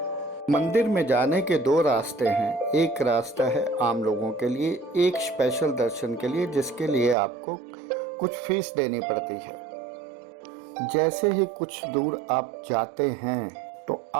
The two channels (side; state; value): left; drops out; at 7.2 s